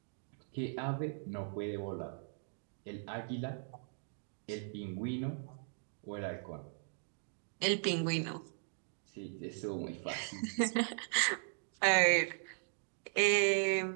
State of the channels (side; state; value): left; silent; digital silence